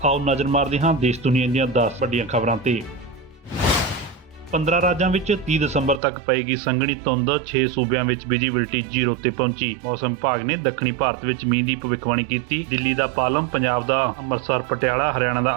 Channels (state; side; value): drops out; left; at 6.0 s